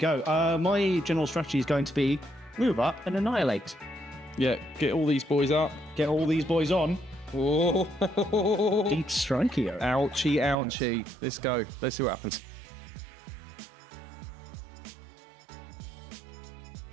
My general strategy is going to be move up and annihilate. Yeah, get all these boys up. Get all these boys on. Oh. Deep strike here. Ouchie, ouchie. Let's go. Let's see what happens.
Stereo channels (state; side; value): drops out; left; at 10.6 s